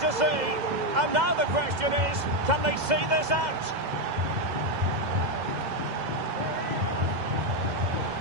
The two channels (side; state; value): left; late; 2.0 ms